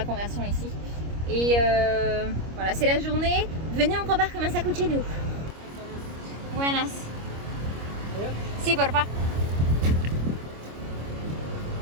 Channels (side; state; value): left; late; 25 ms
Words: conversion ici. Et voilà, c'est la journée. Venez, on compare combien ça coûte chez nous. Buenas. Si, porfa.